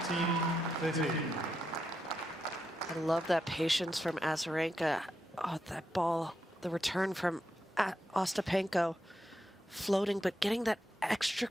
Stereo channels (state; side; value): normal; both; correlation 0.84